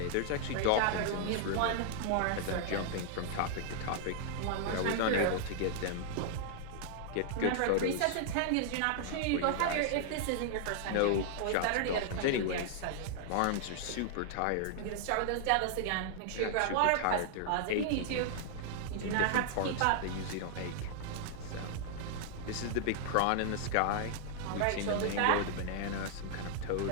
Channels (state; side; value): different; both; correlation -0.01